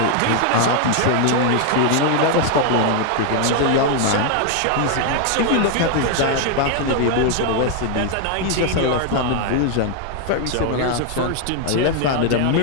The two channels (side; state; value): both; different; correlation 0.00